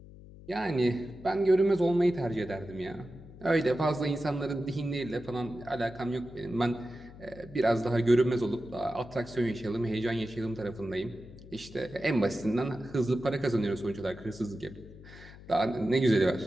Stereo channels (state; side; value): noise; left; hum, 18 dB below the sound